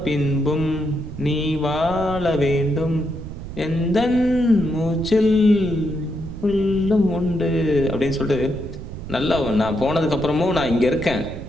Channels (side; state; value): right; noise; rumble, 10 dB below the sound